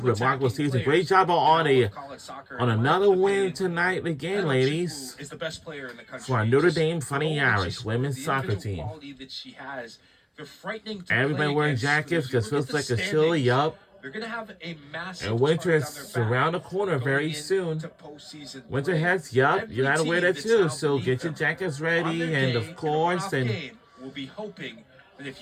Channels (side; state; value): both; identical; correlation 1.00